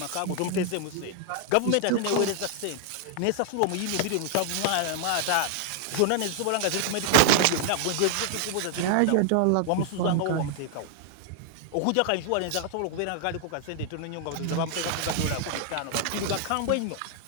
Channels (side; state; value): both; different; correlation 0.00